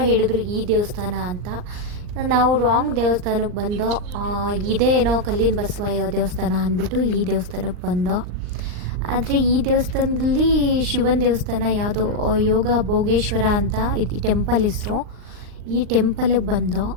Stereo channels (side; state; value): left; late; 39 ms